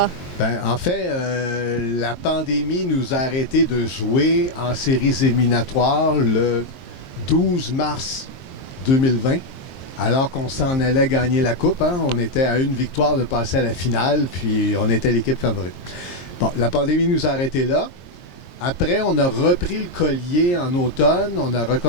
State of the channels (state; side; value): late; right; 23 ms